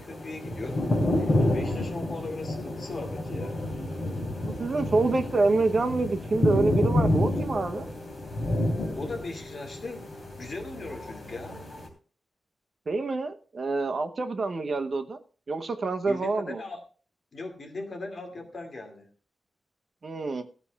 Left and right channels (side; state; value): both; normal; correlation 0.89